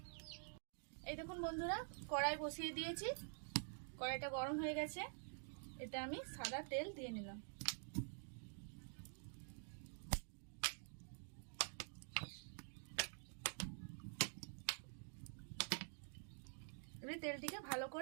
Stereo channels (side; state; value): left; silent; digital silence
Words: এই দেখুন বন্ধুরা, কড়াই বসিয়ে দিয়েছি। কড়াইটা গরম হয়ে গেছে। এটা আমি সাদা তেল দিয়ে নিলাম। এবার তেলটিকে ভালো